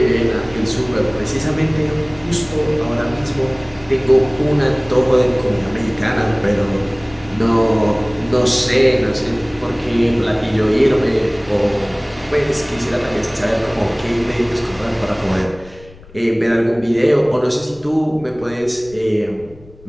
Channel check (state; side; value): noise; left; rumble, 23 dB below the sound